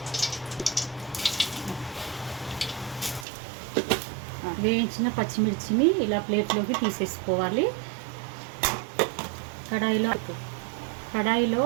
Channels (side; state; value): left; drops out; at 3.2 s